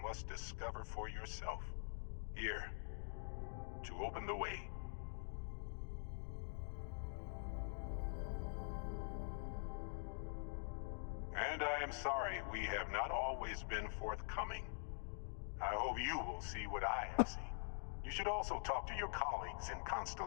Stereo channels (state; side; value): silent; right; digital silence